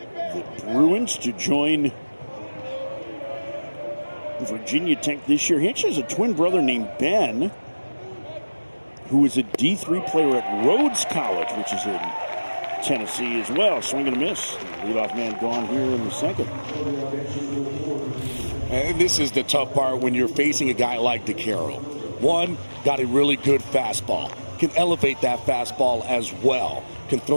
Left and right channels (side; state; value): both; inverted; correlation -1.00